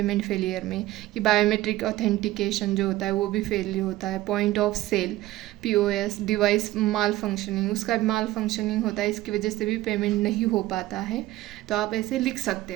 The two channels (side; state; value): left; quieter; 16.4 dB